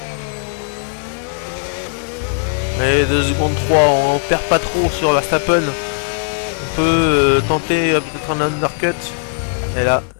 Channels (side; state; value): right; silent; 62 dB below the other